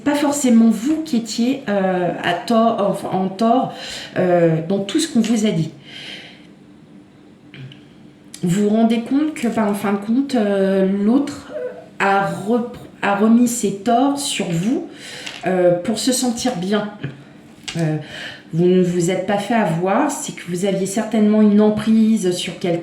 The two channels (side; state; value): both; identical; correlation 1.00